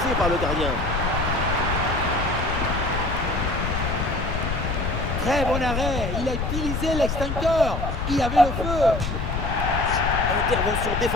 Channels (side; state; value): left; noise; rumble, 3 dB below the sound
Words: par le gardien. Très bon arrêt. Il a utilisé l'extincteur. Il avait le feu. Intervention